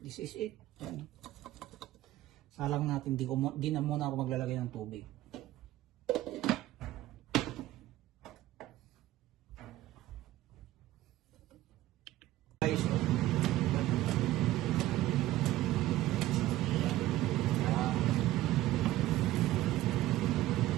this is it. Yan. Salang natin, di na muna ako maglalagay ng tubig. Guys,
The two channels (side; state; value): left; quieter; 15.5 dB